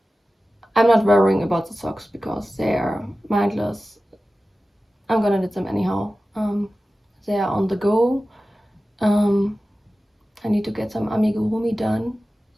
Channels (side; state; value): both; normal; correlation 0.95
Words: I'm not worrying about the socks because they are mindless. I'm gonna knit them anyhow. They are on the go. I need to get some amigurumi done.